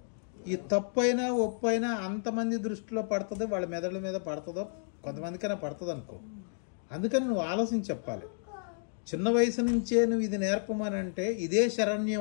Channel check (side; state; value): right; silent; digital silence